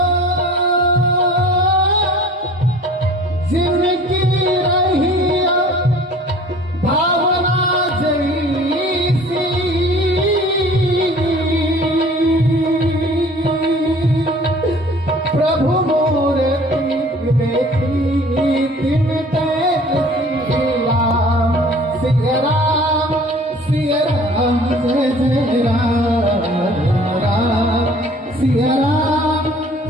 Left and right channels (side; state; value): both; normal; correlation 0.49